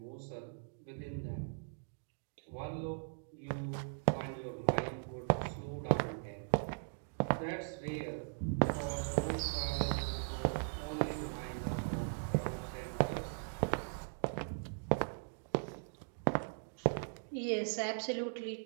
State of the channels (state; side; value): silent; left; digital silence